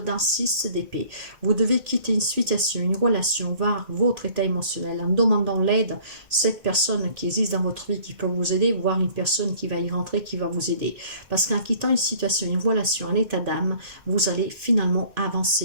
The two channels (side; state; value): left; late; 2.5 ms